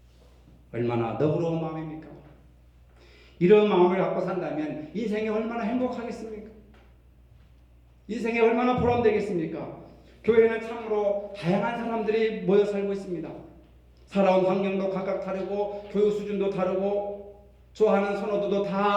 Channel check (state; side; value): identical; both; correlation 1.00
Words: 얼마나 너그러운 마음입니까? 이런 마음을 갖고 산다면 인생이 얼마나 행복하겠습니까? 인생이 얼마나 보람되겠습니까? 교회는 참으로 다양한 사람들이 모여 살고 있습니다. 살아온 환경도 각각 다르고 교육 수준도 다르고 좋아하는 선호도도